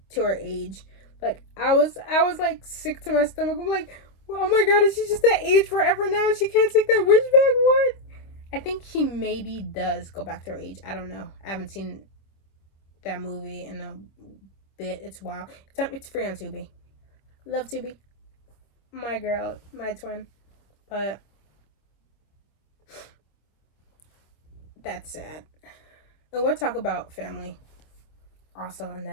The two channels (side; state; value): right; late; 26 ms